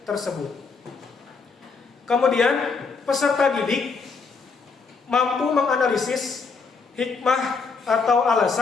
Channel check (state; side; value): quieter; right; 4.8 dB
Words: tersebut. Kemudian peserta didik mampu menganalisis hikmah atau